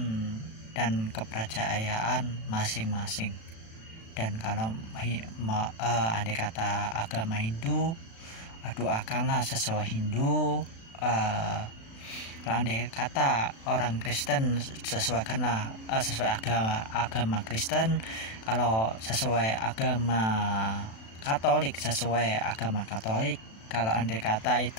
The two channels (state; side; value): late; right; 36 ms